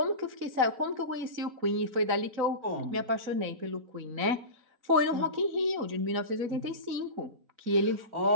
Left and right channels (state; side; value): late; left; 4.0 ms